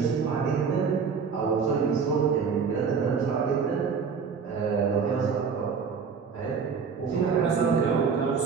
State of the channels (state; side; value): quieter; left; 5.9 dB